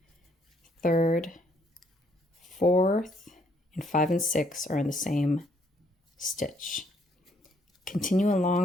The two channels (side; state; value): both; normal; correlation 0.68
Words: third, fourth, and 5 and 6 are in the same stitch. Continue